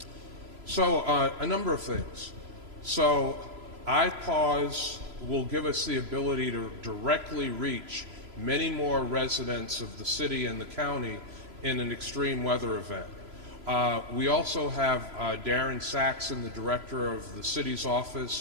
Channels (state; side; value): late; left; 3.0 ms